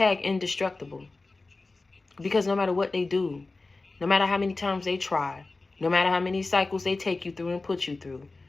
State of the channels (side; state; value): right; quieter; 3.5 dB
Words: indestructible. Because no matter what they do, no matter how many times they try, no matter how many cycles they take you through and put you through,